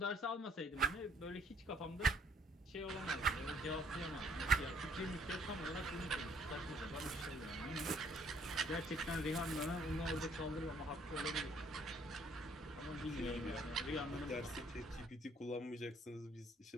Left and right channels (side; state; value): both; normal; correlation 0.63